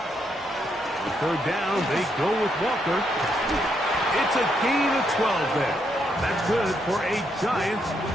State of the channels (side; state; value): both; normal; correlation 0.77